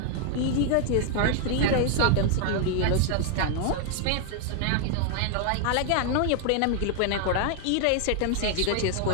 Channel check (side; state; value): both; different; correlation 0.00